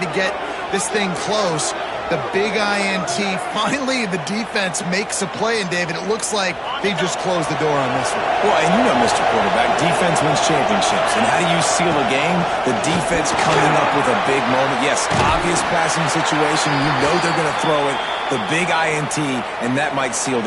get this thing close. The big INT. Finally, the defense makes a play, and David, it looks like they just closed the door on this one. Well, and you know, Mr. Quarterback, defense wins championships. And how do you seal a game? The defense coming up with a big moment. Yes, obvious passing situation. You know they're going to throw it. The big INT, and that might seal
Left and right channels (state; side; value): identical; both; correlation 1.00